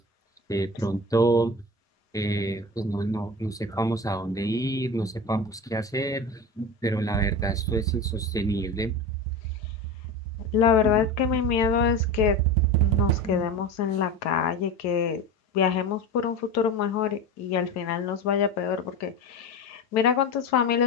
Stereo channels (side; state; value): both; normal; correlation 0.27